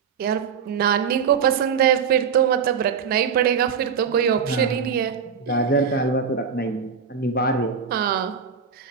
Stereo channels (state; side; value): quieter; left; 6.7 dB